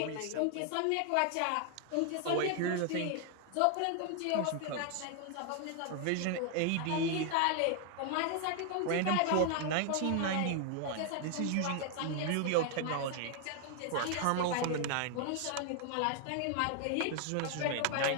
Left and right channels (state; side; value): different; both; correlation 0.00